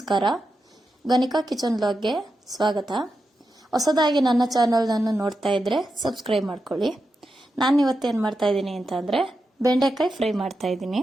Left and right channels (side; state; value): both; normal; correlation 0.88